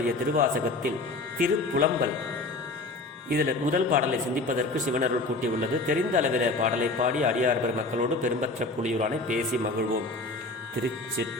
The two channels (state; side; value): quieter; right; 3.1 dB